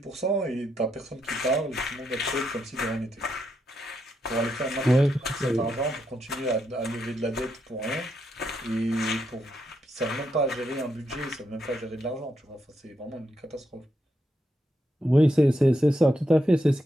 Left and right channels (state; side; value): normal; both; correlation 0.81